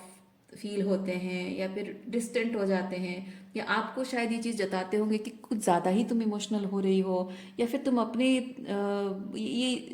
फील होते हैं या फिर डिस्टेंट हो जाते हैं, या आपको शायद ये चीज़ जताते होंगे कि कुछ ज़्यादा ही तुम इमोशनल हो रही हो, या फिर तुम अपने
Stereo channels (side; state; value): both; identical; correlation 1.00